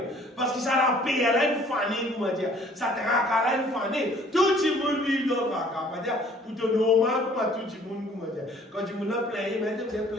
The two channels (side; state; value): both; normal; correlation 0.56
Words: Parce que ça la paye, elle a une fanée, comment dire, ça traque, elle a une fanée. Tout le monde vit dans le traque, comment dire, pour te normal, comment tout le monde, comment dire. Quand tout le monde a plein, mais vous êtes